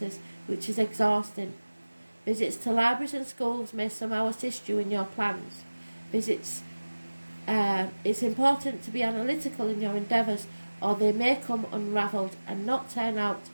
which is exhausting. Visits to libraries and schools may somehow assist you in your plans. It's important to be analytical in your endeavours, or they may come unravelled and not turn out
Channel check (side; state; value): both; inverted; correlation -1.00